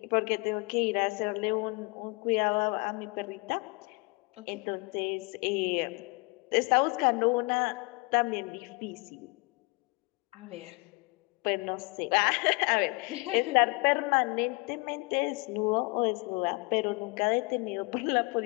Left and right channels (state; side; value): quieter; right; 28.0 dB